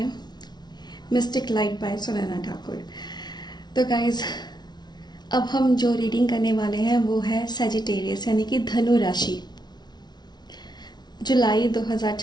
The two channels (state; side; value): late; right; 0.20 ms